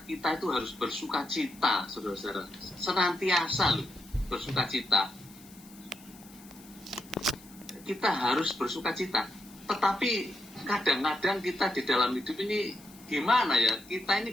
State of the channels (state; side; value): noise; left; hiss, 22 dB below the sound